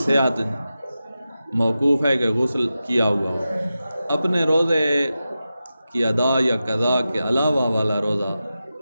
موقوف ہے کہ غسل کیا ہوا ہو۔ اپنے روزے کی ادا یا قضا کے علاوہ والا روزہ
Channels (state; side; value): inverted; both; correlation -0.92